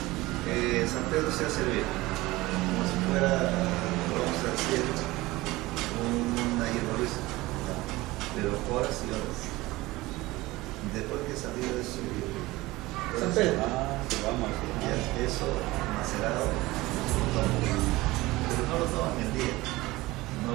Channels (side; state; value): left; quieter; 19.7 dB